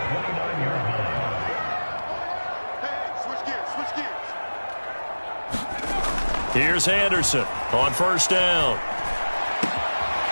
Here's Anderson on first down.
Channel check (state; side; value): inverted; both; correlation -1.00